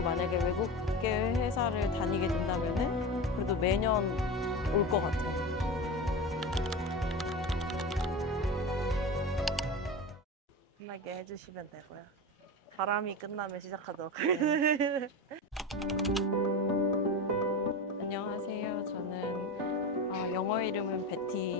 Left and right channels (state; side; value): normal; both; correlation 0.24